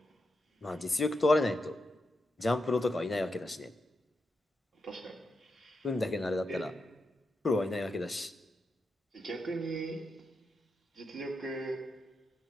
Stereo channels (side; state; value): both; normal; correlation 0.86